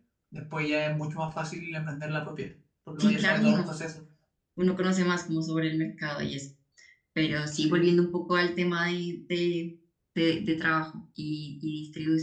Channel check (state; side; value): identical; both; correlation 1.00